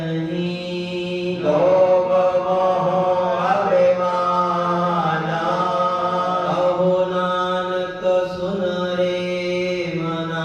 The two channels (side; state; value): both; identical; correlation 1.00